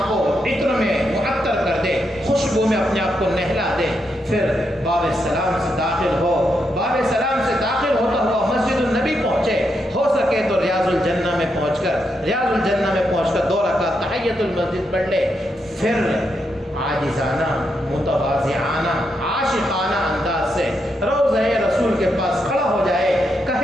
کو عطر میں معطر کر دے، خوشبو میں اپنے آپ کو نہلا دے، پھر باب سلام سے داخل ہو، باب سلام سے داخل ہوتا ہوا مسجد النبی پہنچے، ہو سکے تو ریاض الجنہ میں پہنچ کر 2 رکعت تحیۃ المسجد پڑھ لے، پھر عاجزانہ متواضعانہ عاشقانہ انداز سے روضہ رسول کے پاس کھڑا ہو جائے،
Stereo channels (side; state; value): both; normal; correlation 0.82